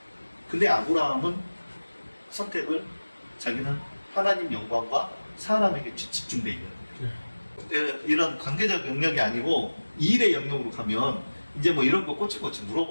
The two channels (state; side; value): inverted; both; correlation -1.00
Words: 근데 아브라함은 선택을 자기는 하나님 영광과 사람에게 집중돼 있는 거예요. 이런 관계적 영역이 아니고 일의 영역으로 가면 이제 뭐 이런 거 꼬치꼬치